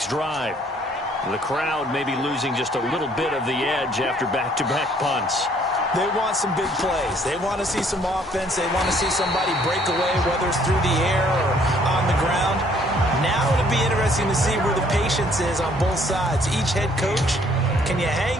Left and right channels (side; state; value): both; normal; correlation 0.62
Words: drive. The crowd may be losing just a little bit of the edge after back-to-back punts. They want some big plays. They want to see some offense. They want to see somebody break away, whether it's through the air or on the ground. Now it'll be interesting to see where the patience is on both sides. Each head coach, can you